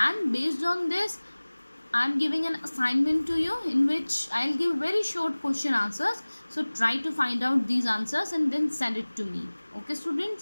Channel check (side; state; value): both; inverted; correlation -1.00